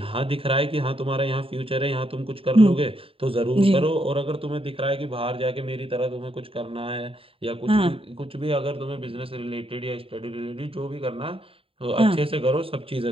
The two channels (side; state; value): left; late; 0.27 ms